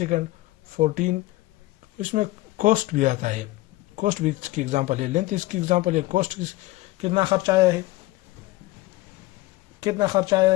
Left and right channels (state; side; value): quieter; right; 18.9 dB